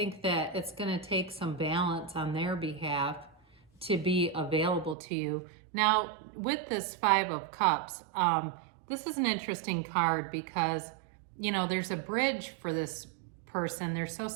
that it's going to take some balance on their behalf to be available to you. Now, with this Five of Cups, this is an interesting card because, you know, there's a bridge for this person. They're so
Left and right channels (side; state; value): left; drops out; at 5.0 s